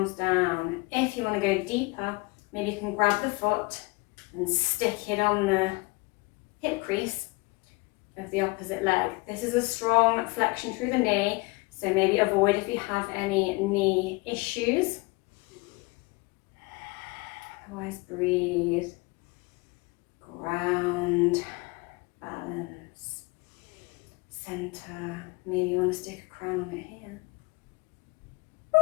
down. If you want to go deeper, maybe you can grab the foot and stick it on the hip crease of the opposite leg. This is a strong flexion through the knee, so maybe avoid if you have any knee issues. Otherwise, breathe, ground, balance, center. Maybe you want to stick a crown on it here.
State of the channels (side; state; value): right; quieter; 25.1 dB